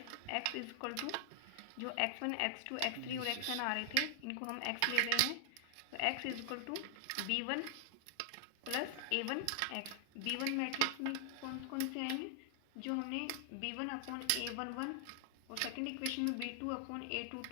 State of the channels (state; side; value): different; both; correlation 0.00